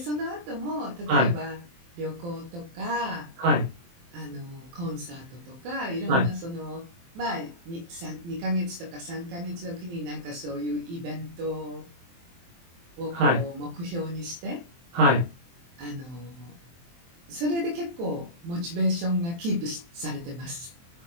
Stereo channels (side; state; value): left; late; 23 ms